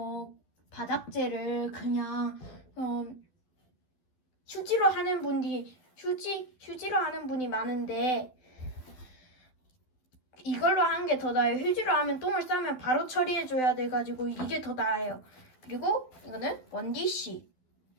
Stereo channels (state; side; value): late; right; 12 ms